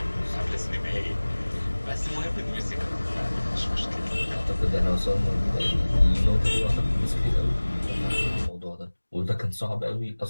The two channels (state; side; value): inverted; both; correlation -1.00